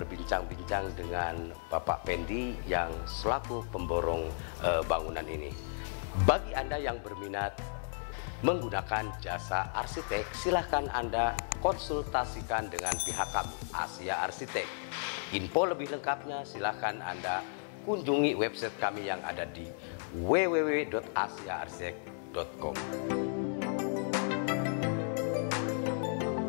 dengan Bapak Pendi yang selaku pemborong bangunan ini. Bagi Anda yang berminat menggunakan jasa arsitek, silahkan Anda konsultasikan dengan pihak kami, Asia Arsitek. Info lebih lengkapnya silahkan Anda kunjungi website kami yang ada di www.asiaarsitek.com.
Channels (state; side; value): silent; right; digital silence